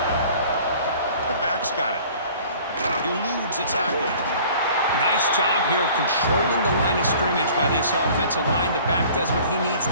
The back's got it. Eludes a tackle. Nice job here of controlling the line of scrimmage by this offensive line. The back does what he needs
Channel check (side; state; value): both; inverted; correlation -0.49